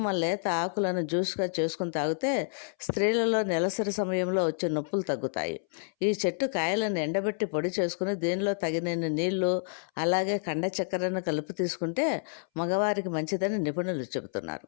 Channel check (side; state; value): right; silent; 58 dB below the other